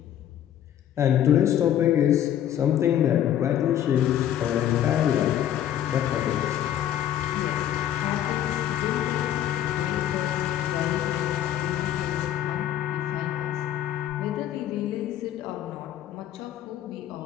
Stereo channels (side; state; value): right; quieter; 11.0 dB